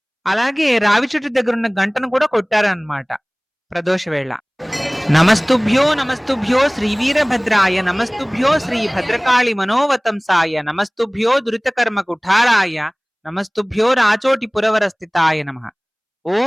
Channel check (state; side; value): identical; both; correlation 1.00